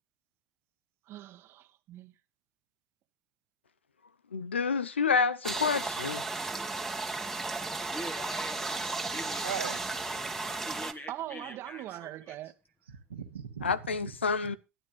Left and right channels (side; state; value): both; normal; correlation 0.04